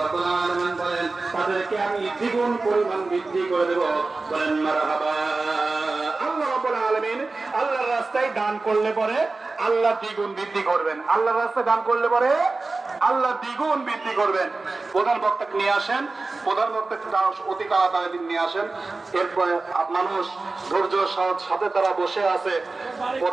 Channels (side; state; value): left; quieter; 3.6 dB